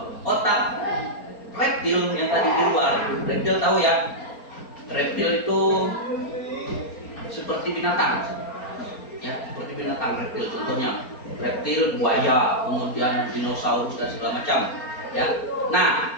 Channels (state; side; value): late; right; 4.3 ms